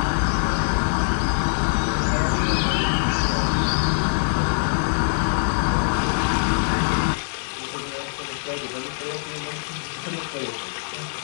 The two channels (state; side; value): silent; right; digital silence